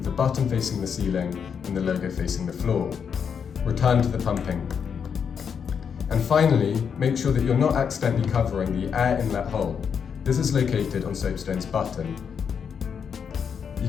the button facing the ceiling and the logo facing the floor. Return to the pumping. And finally, make sure that you're not accidentally covering the air inlet hole. This is located on soapstone's button. You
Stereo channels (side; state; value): right; quieter; 7.0 dB